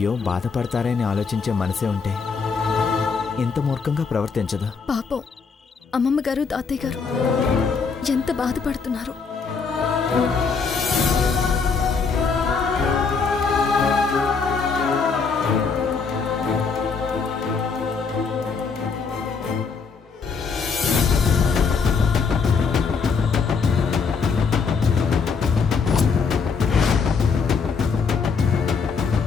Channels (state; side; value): quieter; right; 5.3 dB